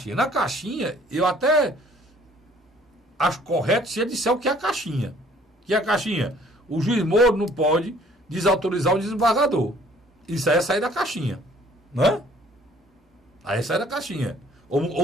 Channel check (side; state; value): both; normal; correlation 0.57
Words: Na caixinha, eu até acho correto se ele disser o que é a caixinha. Que é a caixinha? O juiz Moro não pode desautorizar o desembargador. Isso aí é sair da caixinha, né? Aí é sair da caixinha.